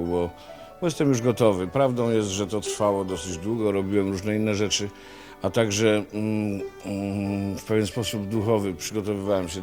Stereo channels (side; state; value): both; identical; correlation 1.00